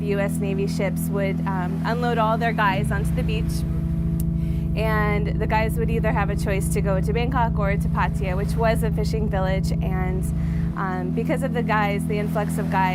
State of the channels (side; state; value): both; identical; correlation 1.00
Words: U.S. Navy ships would unload all their guys onto the beach, and the guys would either have a choice to go to Bangkok or to Pattaya, which was a fishing village. And because of the influx of